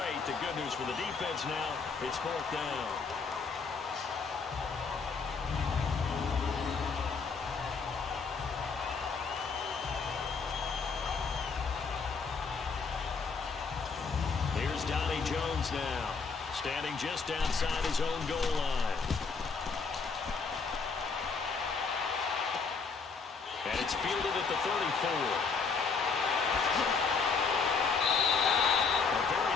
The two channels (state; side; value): quieter; right; 5.0 dB